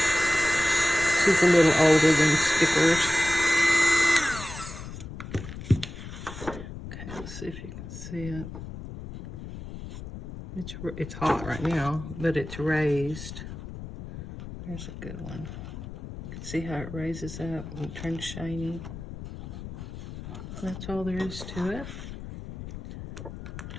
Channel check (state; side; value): noise; left; rumble, 11 dB below the sound